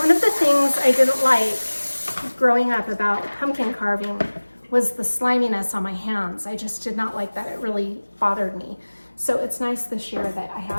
of the things I didn't like growing up about pumpkin carving was the sliminess on my hands. I just did not like that. It really bothered me. So it's nice this year that I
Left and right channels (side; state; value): both; inverted; correlation -1.00